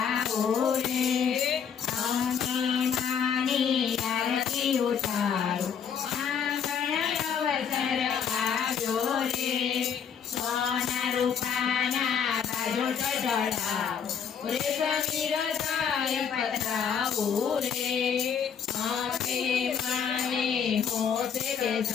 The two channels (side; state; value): right; quieter; 7.4 dB